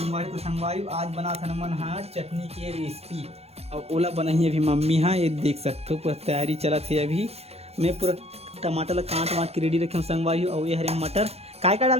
तो संगवारी आज बना था मन हाँ चटनी की रेसिपी और ओला बनाई अभी मम्मी। हाँ ये देख सकते हो पूरा तैयारी चला थी। अभी मैं पूरा टमाटर ला काट वाट के रेडी रखे हूँ संगवारी। और ये हरे मटर काय का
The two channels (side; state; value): left; late; 0.30 ms